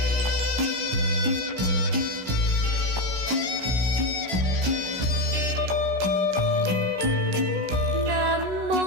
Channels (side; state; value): left; late; 16 ms